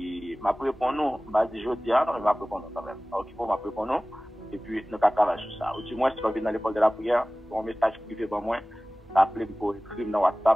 m'a répondre nous, m'a dit jeudi, non, m'a répondre quand même. Ok, pour m'a répondre nous. Et puis, nous allons travailler sur ça. Ou du moins, si vous venez dans l'école de la prière, un message privé pour moi, appelez pour écrire dans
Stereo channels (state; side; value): normal; both; correlation 0.98